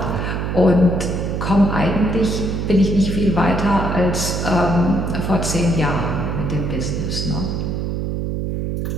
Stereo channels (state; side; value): noise; right; hum, 2 dB below the sound